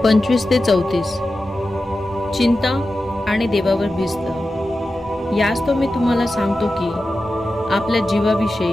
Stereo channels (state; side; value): noise; right; rumble, 29 dB below the sound